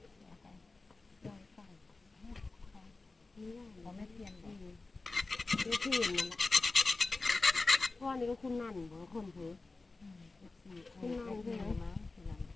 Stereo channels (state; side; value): quieter; right; 3.6 dB